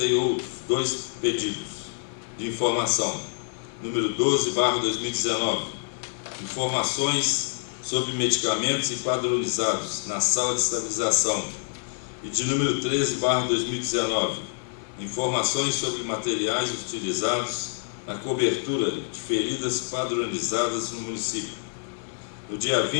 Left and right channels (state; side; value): silent; right; 60 dB below the other